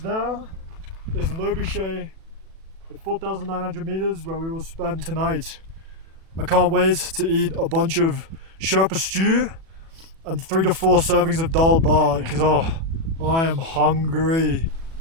there is Lobuche at 4,900 meters where we will spend tonight. I can't wait to eat a bunch of Sherpa stew and 3 to 4 servings of dal bhat because I am hungry.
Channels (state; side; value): late; left; 37 ms